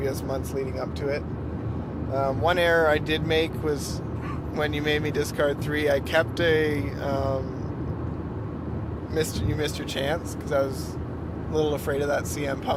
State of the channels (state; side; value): identical; both; correlation 1.00